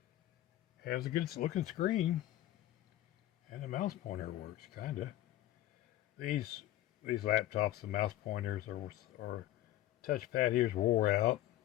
has a good looking screen, and the mouse pointer works kinda. These laptops, the mouse pointers or touchpad here's wore out,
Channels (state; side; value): quieter; right; 14.2 dB